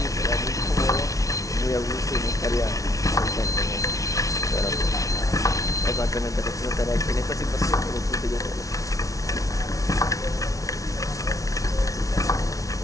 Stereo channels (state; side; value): late; right; 0.17 ms